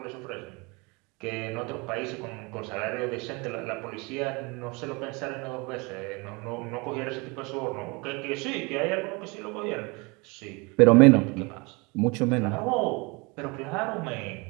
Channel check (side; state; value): left; quieter; 27.9 dB